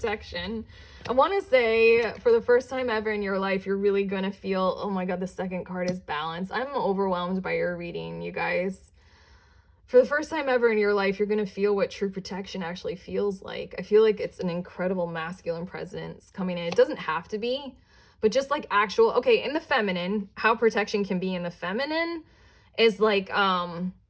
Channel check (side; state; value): both; identical; correlation 1.00